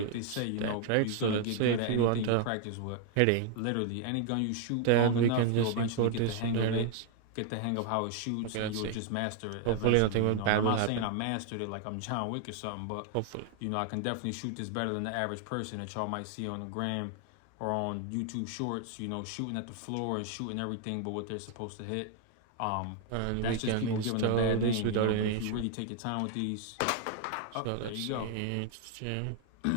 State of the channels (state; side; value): different; both; correlation 0.00